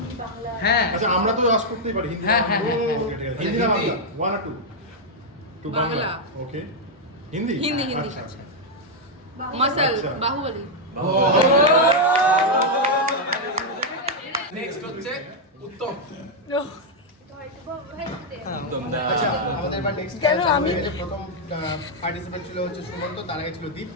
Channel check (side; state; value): both; normal; correlation -0.02